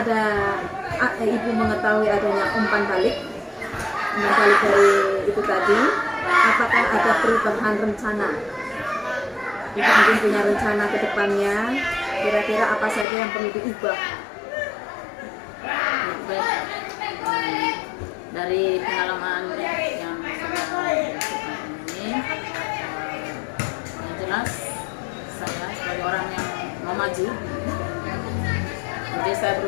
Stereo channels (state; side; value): drops out; right; at 13.1 s